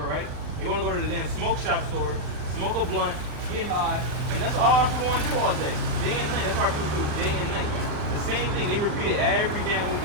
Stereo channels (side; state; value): left; late; 40 ms